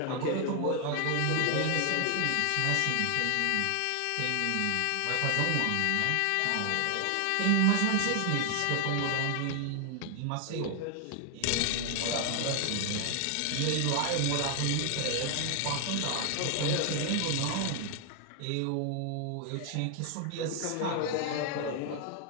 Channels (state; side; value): different; both; correlation 0.00